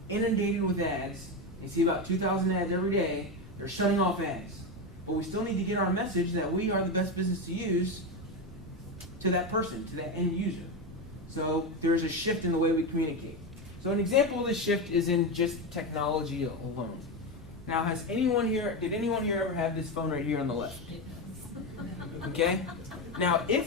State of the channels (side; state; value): both; normal; correlation 0.14